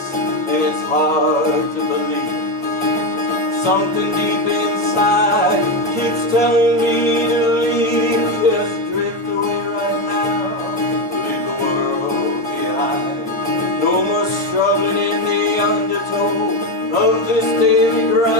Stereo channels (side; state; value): both; normal; correlation 0.11